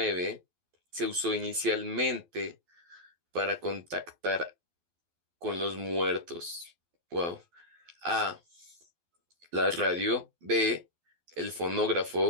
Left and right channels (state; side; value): late; left; 12 ms